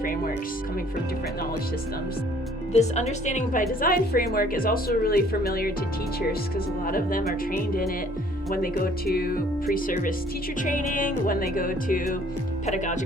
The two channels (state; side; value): normal; both; correlation 0.58